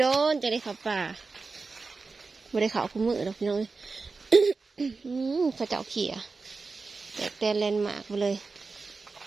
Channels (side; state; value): left; quieter; 4.2 dB